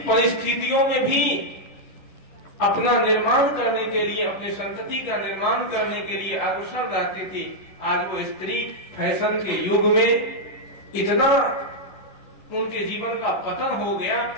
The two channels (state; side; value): late; right; 11 ms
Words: परिस्थितियों में भी अपना निर्माण करने के लिए, अपनी संतति का निर्माण करने के लिए अग्रसर रहती थी, आज वो स्त्री फैशन के युग में इतना उनके जीवन का पतन हो गया